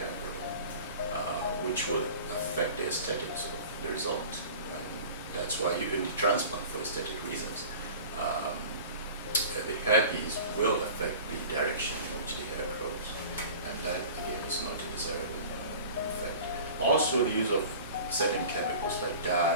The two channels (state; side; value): inverted; both; correlation -0.40